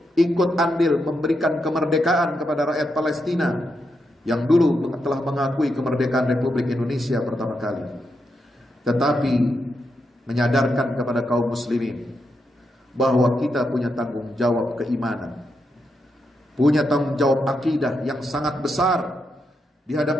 ikut andil memberikan kemerdekaan kepada rakyat Palestina yang dulu telah mengakui kemerdekaan Republik Indonesia pertama kali, tetapi menyadarkan kepada kaum muslimin bahwa kita punya tanggung jawab keimanan, punya tanggung jawab akidah yang sangat besar di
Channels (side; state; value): both; normal; correlation 0.83